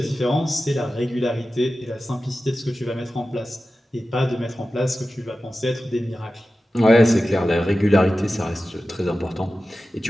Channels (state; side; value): normal; both; correlation 0.94